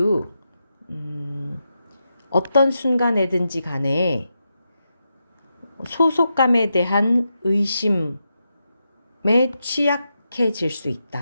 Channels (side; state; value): both; inverted; correlation -0.87